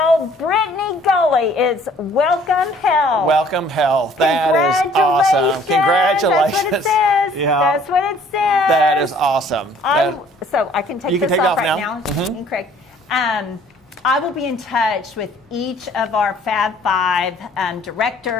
Brittany Gully is Welcome Health. Welcome Health. That is awesome. Congratulations. That's what it says. Yeah. That's what it says. That is awesome. So I can take You can this take it off off right now. now. And Craig. I will be in touch with each of our Fab Five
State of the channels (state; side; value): normal; both; correlation 0.57